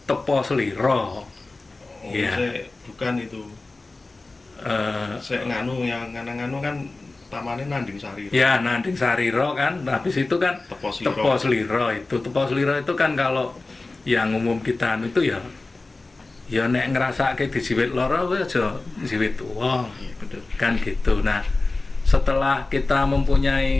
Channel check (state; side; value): quieter; right; 3.3 dB